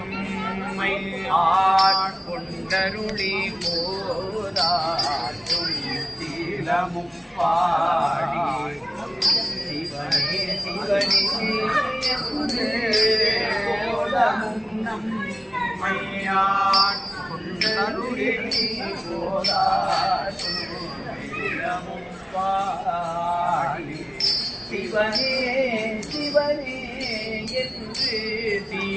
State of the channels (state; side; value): identical; both; correlation 1.00